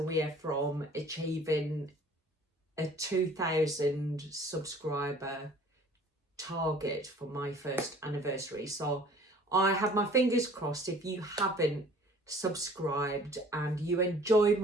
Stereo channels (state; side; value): normal; both; correlation 0.51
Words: from achieving a 2,000 subscriber target for my first anniversary. So I have my fingers crossed. If you haven't subscribed and you enjoy